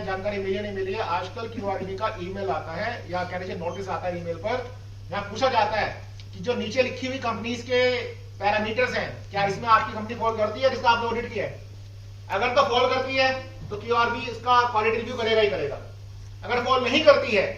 जानकारी मिली है नहीं मिली है. आजकल QRB का ईमेल आता है या कह लीजिए नोटिस आता है ईमेल पर, यहाँ पूछा जाता है कि जो नीचे लिखी हुई कंपनीज के पैरामीटर्स हैं, क्या इसमें आपकी कंपनी फॉल करती है जिसका आपने ऑडिट किया है? अगर तो फॉल करती है तो QRB इसका क्वालिटी रिव्यू करेगा ही करेगा. अगर फॉल नहीं करती है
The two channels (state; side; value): identical; both; correlation 1.00